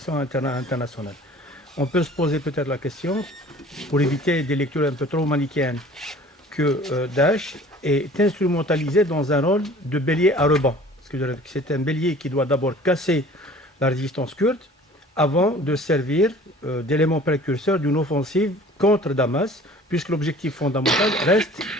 On peut se poser peut-être la question, pour éviter des lectures un peu trop manichéennes, que Daesh est instrumentalisé dans un rôle de bélier à ruban. C'est un bélier qui doit d'abord casser la résistance kurde avant de servir d'élément précurseur d'une offensive contre Damas, puisque l'objectif fondamental reste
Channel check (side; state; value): both; normal; correlation 0.48